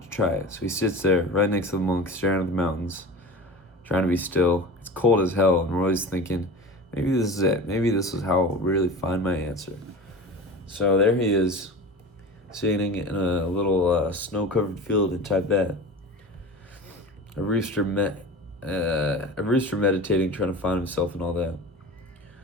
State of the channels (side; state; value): both; normal; correlation 0.33